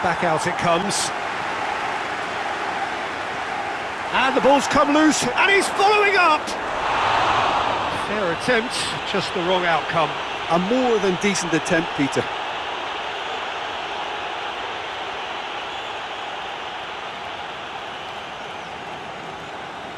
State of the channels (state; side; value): identical; both; correlation 1.00